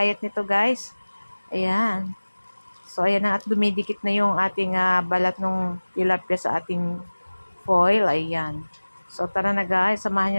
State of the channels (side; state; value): both; inverted; correlation -1.00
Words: nito guys. Ayan. So, ayan na at dumidikit na yung ating balat ng tilapia sa ating foil. Ayan. So, tara na guys. Samahan